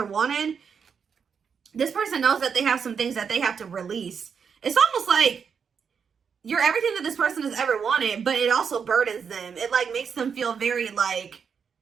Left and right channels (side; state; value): left; quieter; 6.5 dB